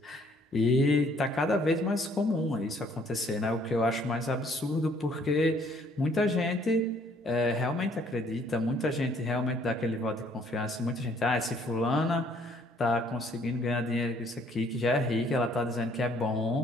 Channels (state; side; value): normal; both; correlation 0.62